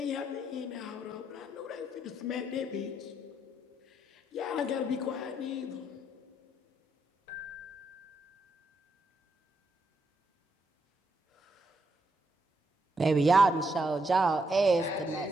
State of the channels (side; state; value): both; normal; correlation 0.78